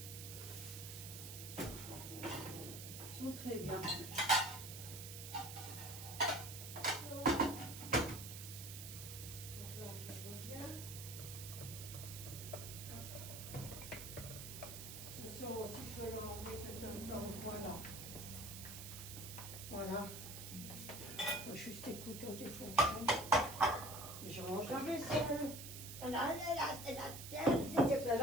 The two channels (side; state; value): right; noise; hiss, 9 dB below the sound